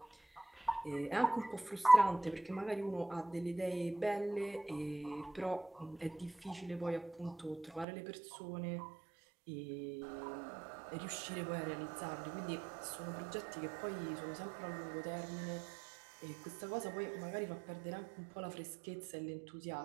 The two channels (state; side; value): drops out; left; at 7.9 s